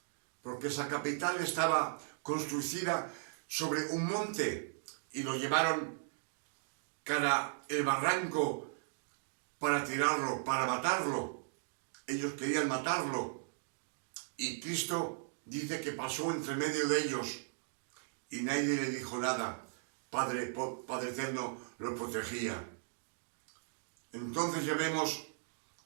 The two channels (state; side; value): silent; left; digital silence